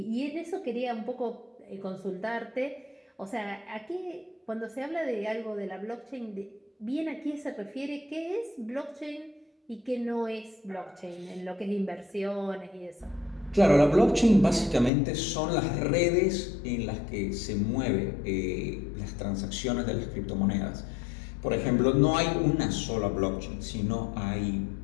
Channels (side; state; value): right; drops out; at 14.9 s